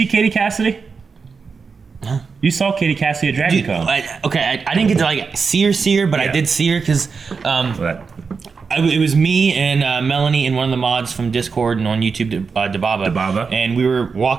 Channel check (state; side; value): quieter; left; 5.2 dB